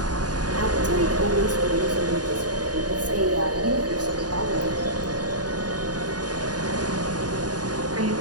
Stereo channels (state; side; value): late; left; 0.69 ms